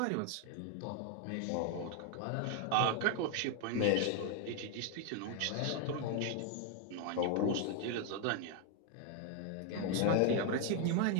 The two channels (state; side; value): different; both; correlation 0.01